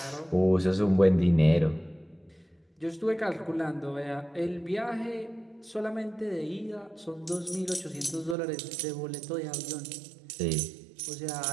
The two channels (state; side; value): drops out; left; at 8.3 s